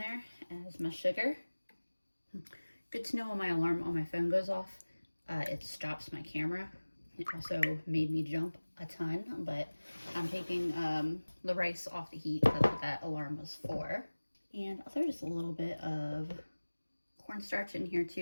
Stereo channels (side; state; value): both; inverted; correlation -1.00